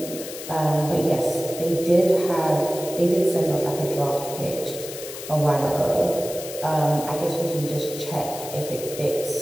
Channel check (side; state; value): left; noise; hiss, 11 dB below the sound